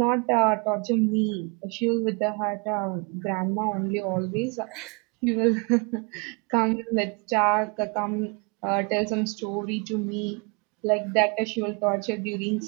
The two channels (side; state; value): left; quieter; 32.7 dB